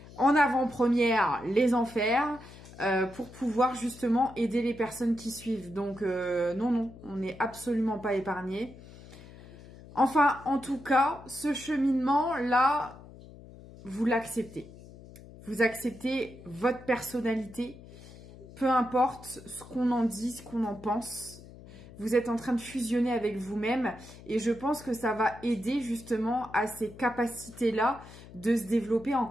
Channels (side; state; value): left; noise; hum, 18 dB below the sound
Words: en avant-première les enfers pour pouvoir justement aider les personnes qui suivent. Donc non, on n'est absolument pas épargné. Enfin, en tout cas, ce cheminement-là, vous l'acceptez. Vous acceptez votre personnalité, peu importe ce qu'on en dit, ce qu'on en pense. Vous êtes en train de fusionner avec vous-même et je pense que ça va aider justement à ces capacités-là de se développer